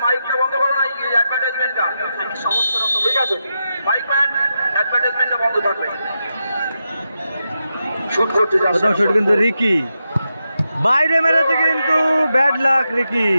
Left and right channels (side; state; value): both; inverted; correlation -0.87